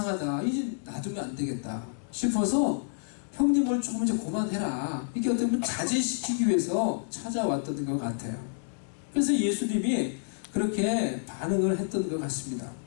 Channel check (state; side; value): silent; right; digital silence